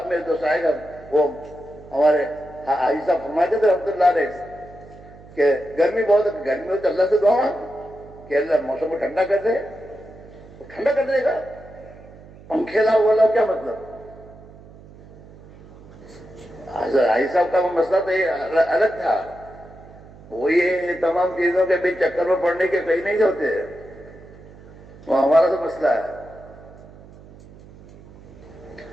میرے دوست آئے گا. وہ ہمارے حاجی صاحب فرماتے تھے رحمۃ اللہ علیہ کہ گرمی بہت ہے، گرمی میں تو اللہ سے دعا کہ اللہ موسم کو ٹھنڈا کر دے. وہ ٹھنڈا کر دے گا. پنکھے لاؤ والا کیا مطلب؟ حاجی صاحب کا وہ مسئلہ تو یہ الگ تھا. وہ یہ تمام چیزوں کے بیچ چکر میں پڑنے کے کہیں نہیں ہوتے. وہ ہمارا تو مسئلہ ہے.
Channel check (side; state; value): right; noise; hum, 20 dB below the sound